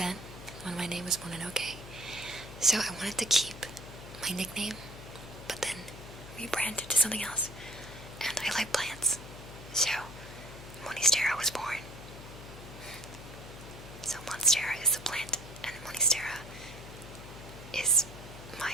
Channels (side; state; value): left; noise; hum, 13 dB below the sound